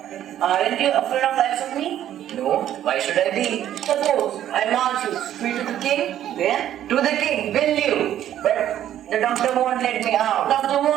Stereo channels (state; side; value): quieter; left; 11.4 dB